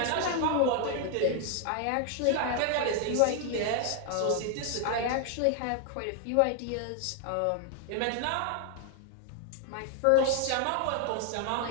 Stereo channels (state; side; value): different; both; correlation 0.00